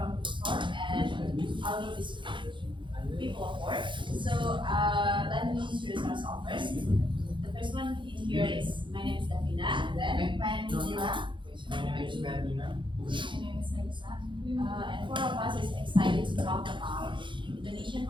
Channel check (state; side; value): late; left; 0.23 ms